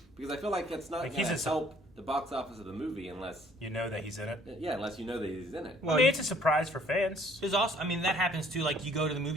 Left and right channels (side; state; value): both; normal; correlation 0.59